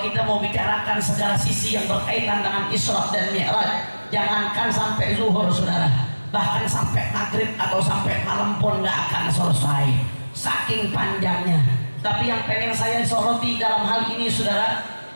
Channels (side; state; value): both; inverted; correlation -1.00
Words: kita mau bicarakan segala sisi yang berkaitan dengan Isra dan Mi'raj, jangankan sampai zuhur, saudara, bahkan sampai maghrib atau sampai malam pun nggak akan selesai, saking panjangnya. Tapi yang pengen saya soroti dalam hal ini, saudara,